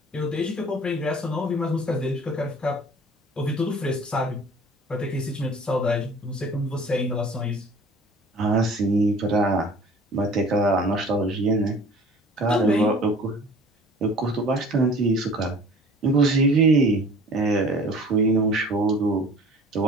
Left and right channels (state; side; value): normal; both; correlation 0.47